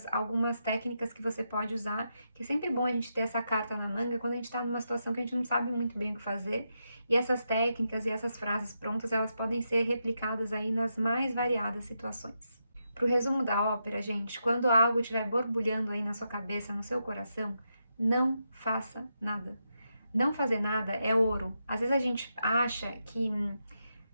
algumas técnicas que você pode usar, que é sempre bom a gente ter essa carta na manga quando a gente está numa situação que a gente não sabe muito bem o que fazer. E essas técnicas e essas frases prontas, elas podem ser replicadas aí nas mais variadas situações. Pro resumo da ópera, gente, quando algo estiver borbulhando aí na sua cabeça, no seu coração, não faça nada. Não fazer nada é ouro. Às vezes a gente acha que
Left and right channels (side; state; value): both; inverted; correlation -0.84